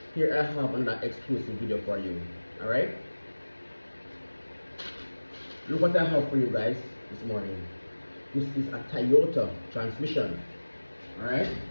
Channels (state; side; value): inverted; both; correlation -1.00